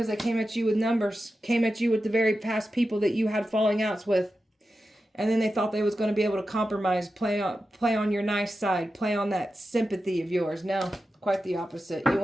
they came at you with numbers. Came at you with the very past people that you had falling outs with. And then they thought they was going to be able to compromise, play on your nice side, play on that sympathy of yours. No, quite the opposite. You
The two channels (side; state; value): both; normal; correlation 0.91